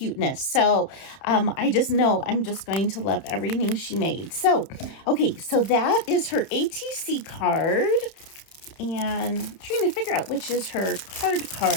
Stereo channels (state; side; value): late; right; 30 ms